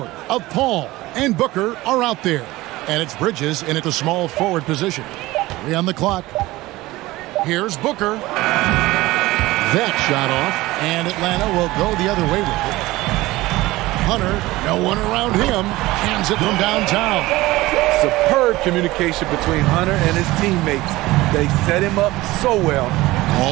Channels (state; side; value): quieter; left; 18.8 dB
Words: of Paul and Booker are out there. And it's Bridges in at the small forward position. 3 on the clock. Here's Booker. That shot off, and Atlanta will go the other way with it. Hunter, no one around him, hands it from downtown. Superb communication between Hunter and his teammates. They set him up so well.